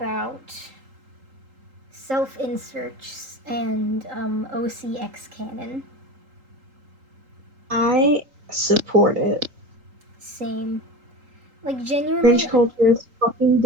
self-inserts and OCX canon? I support it. Same. Like, genuinely... Cringe culture is fucking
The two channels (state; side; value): late; left; 3.8 ms